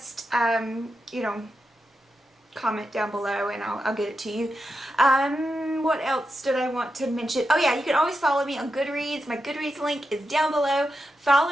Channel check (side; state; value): both; normal; correlation 0.87